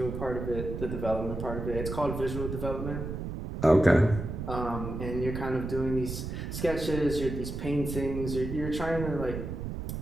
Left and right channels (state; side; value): noise; right; rumble, 5 dB below the sound